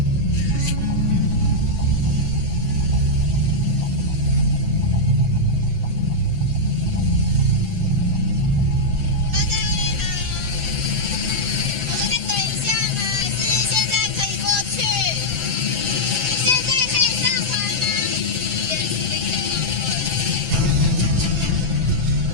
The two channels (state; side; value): late; left; 7.9 ms